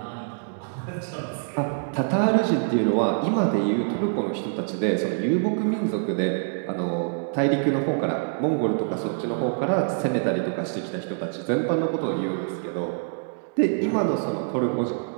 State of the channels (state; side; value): silent; left; digital silence